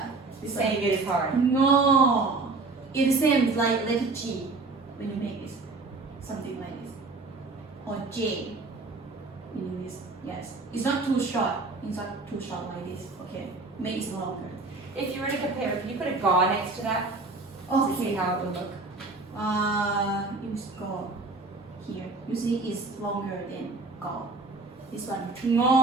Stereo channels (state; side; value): quieter; left; 3.6 dB